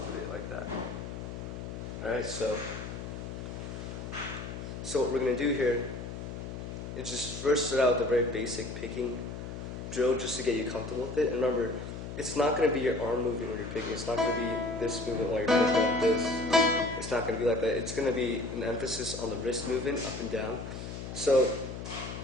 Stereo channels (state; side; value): noise; left; hum, 8 dB below the sound